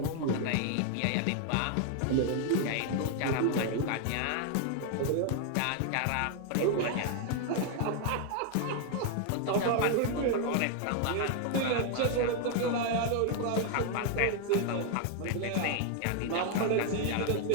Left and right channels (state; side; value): different; both; correlation 0.00